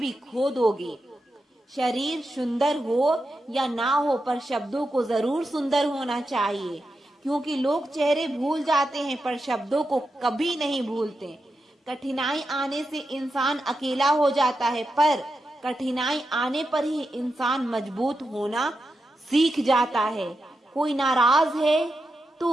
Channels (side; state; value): both; normal; correlation 0.88